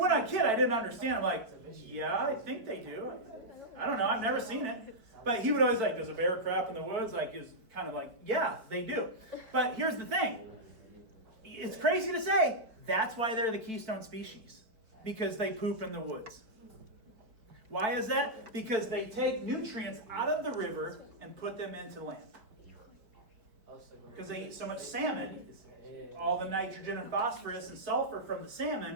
I was a kid, I didn't understand. I'm like, yeah, I think they do. I don't know. I've never seen it. But he would always like, does a bear crap in the woods? Like, is kind of like, yeah, they do. But here's the thing. It's crazy to say, that's why they're the keystone species. Because they poop in the woods. Why is that? Because they take nutrients out of the river and put them into land. Because they eat so much salmon, all the nitrogen and phosphorus and sulfur from the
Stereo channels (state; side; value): late; left; 4.5 ms